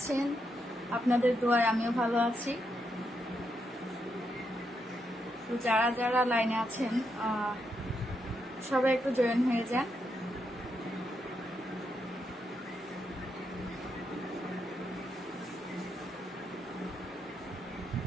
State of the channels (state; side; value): normal; both; correlation 0.81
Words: আপনাদের দোয়ায় আমিও ভালো আছি। তো যারা যারা লাইনে আছেন সবাই একটু জয়েন হয়ে যান।